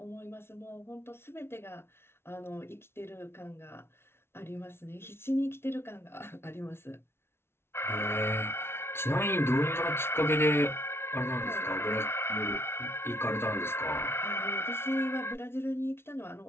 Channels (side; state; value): right; late; 0.12 ms